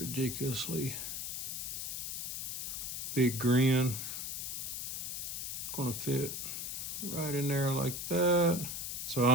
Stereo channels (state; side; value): noise; left; hiss, 4 dB below the sound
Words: big grin. It's going to fit right in there like that.